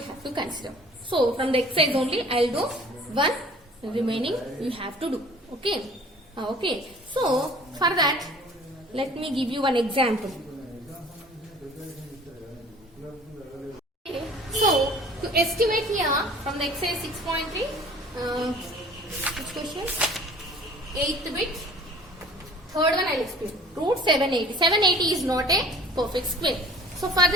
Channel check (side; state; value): both; normal; correlation 0.49